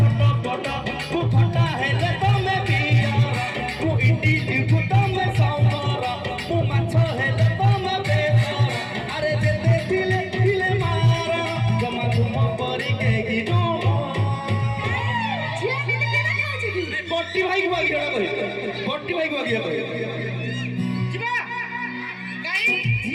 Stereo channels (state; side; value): identical; both; correlation 1.00